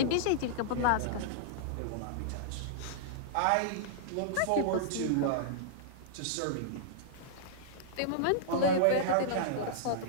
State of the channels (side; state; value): both; different; correlation -0.02